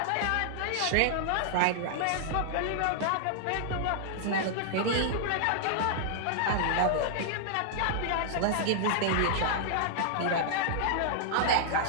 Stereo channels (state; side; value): different; both; correlation -0.01